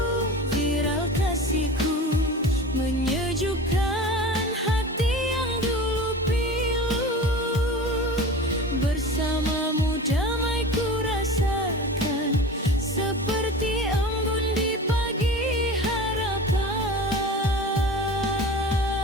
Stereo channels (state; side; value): normal; both; correlation 0.35